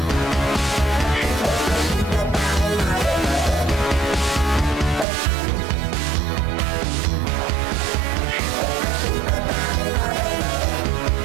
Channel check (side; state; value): left; drops out; at 5.1 s